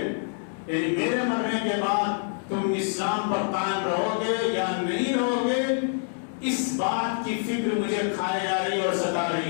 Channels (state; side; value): silent; right; digital silence